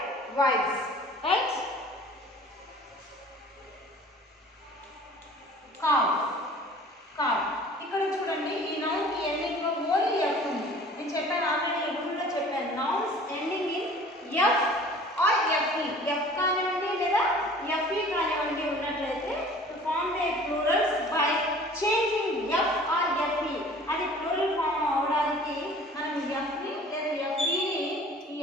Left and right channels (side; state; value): both; normal; correlation 0.47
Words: wifes. Right. Calf calf. ఇక్కడ చూడండి, ఈ నౌన్కి ఎండింగ్లో ఓన్లీ ఎఫ్ ఉంది. నేను చెప్పాను ఆల్రెడీ, రూల్లో చెప్పాను. Nouns ending in F or FE. F కానివ్వండి లేదా ఎఫ్ఈ కానివ్వండి ఉన్నట్లయితే to form the plurals by changing F or FE. అది ప్లూరల్ ఫామ్ అవడానికి మనం ఎఫ్ని లేదా ఎఫ్ఈని